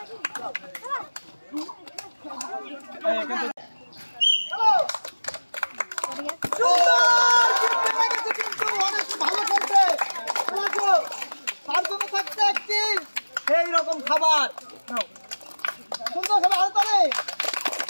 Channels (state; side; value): inverted; both; correlation -1.00